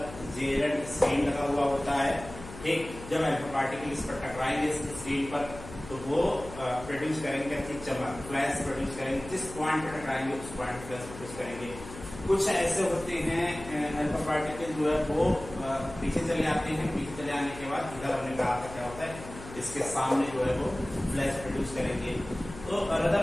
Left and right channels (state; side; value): noise; left; hum, 14 dB below the sound